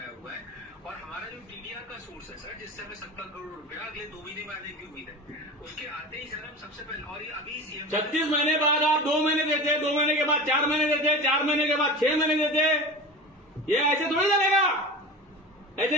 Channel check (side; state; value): both; normal; correlation 0.31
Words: हुआ है, और हमारा जो टीडीआर का सोर्स है सर, जिससे हमें 70 करोड़ रुपया अगले 2 महीने में आने की उम्मीद है, उसके आते ही सर हम सबसे पहले, और ये अभी सीएम 36 महीने बाद आप 2 महीने देते, 2 महीने के बाद 4 महीने देते, 4 महीने के बाद 6 महीने देते। ये ऐसे थोड़ी चलेगा, ऐसे